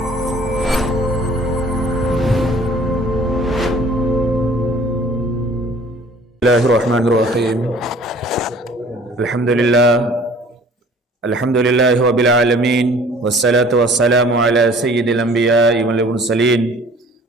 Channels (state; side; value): normal; both; correlation 0.51